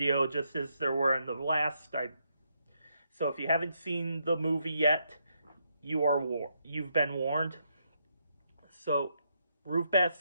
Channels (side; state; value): both; inverted; correlation -0.78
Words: just as there were in the last. So if you haven't seen the movie yet, you've been warned. So Ruth Bat